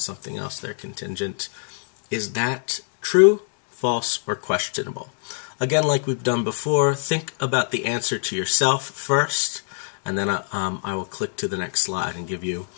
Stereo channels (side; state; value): right; silent; 62 dB below the other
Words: else. They're contingent. Is that true, false, or questionable? Again, like we've done before, think about the answer to yourself first, and then I will click to the next slide and give you